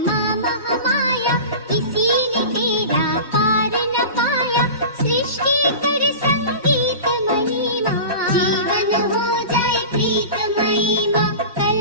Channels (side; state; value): both; inverted; correlation -0.33